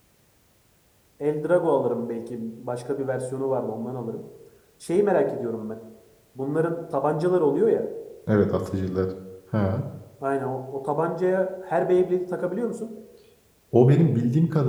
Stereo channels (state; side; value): identical; both; correlation 1.00